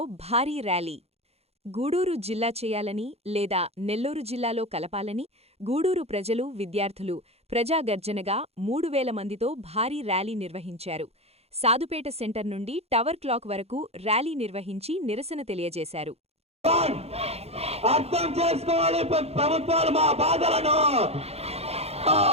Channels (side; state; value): left; late; 0.30 ms